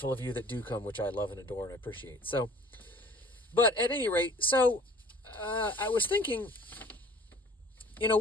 of you that do come, which I love and adore and appreciate. So, but at any rate, I was thinking,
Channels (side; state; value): both; normal; correlation 0.50